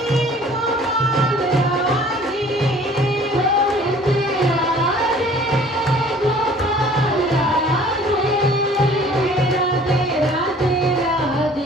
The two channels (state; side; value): normal; both; correlation 0.51